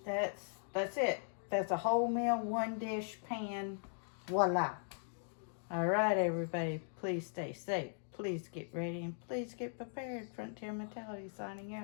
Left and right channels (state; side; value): silent; right; digital silence